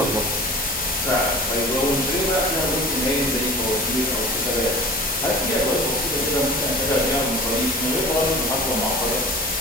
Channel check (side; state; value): both; normal; correlation 0.39